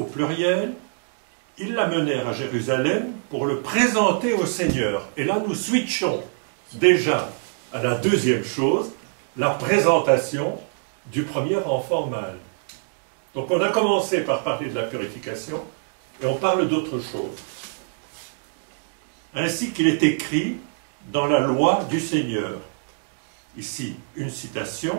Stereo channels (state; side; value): silent; left; digital silence